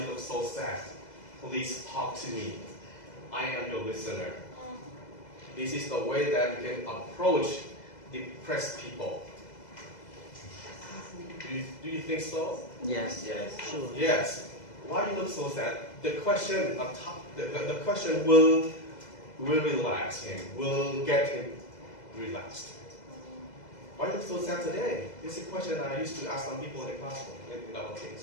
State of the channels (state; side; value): late; right; 2.0 ms